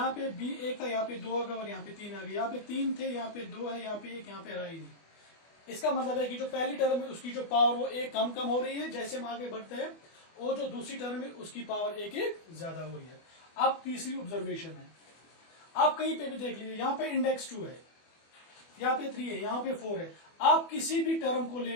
पे b 1 था, यहाँ पे 2 आ गया, और यहाँ पे 3 आ गया, यहाँ पे 3 थे, यहाँ पे 2 है, यहाँ पे 1, यहाँ पे रहा ही नहीं। इसका मतलब है कि जो पहली टर्म है उसकी जो पावर वो 1 कम कम हो रही है जैसे हम आगे बढ़ते हैं, और जो दूसरी टर्म है उसकी पावर 1 1 ज्यादा हो रही है। अब तीसरी ऑब्जर्वेशन है, आप कहीं पे भी देख लीजिए, यहाँ पे इंडेक्स 2 है, यहाँ पे 3 है, यहाँ पे 4 है। आप किसी भी टर्म को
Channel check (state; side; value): late; right; 24 ms